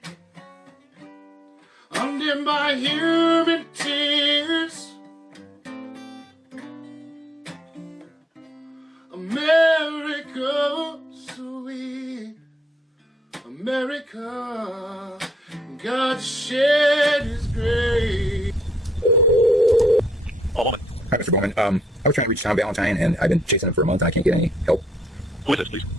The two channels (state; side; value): normal; both; correlation 0.73